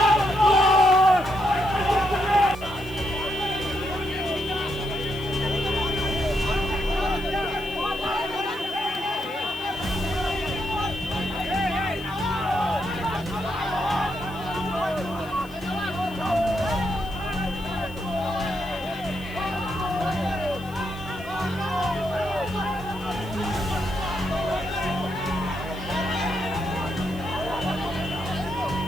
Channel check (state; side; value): noise; left; hiss, 23 dB below the sound